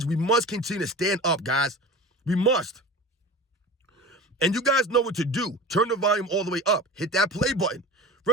We must continue to stand up, guys. We must. And you guys know what to do. Turn the volume all the way up. Hit that play button.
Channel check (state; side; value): normal; both; correlation 0.34